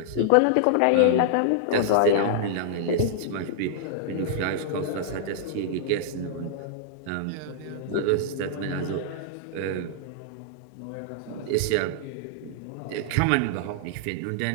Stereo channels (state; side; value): different; both; correlation -0.01